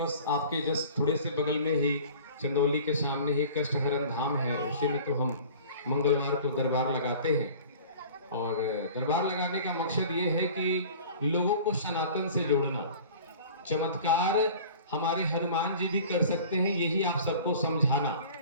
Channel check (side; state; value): both; inverted; correlation -0.43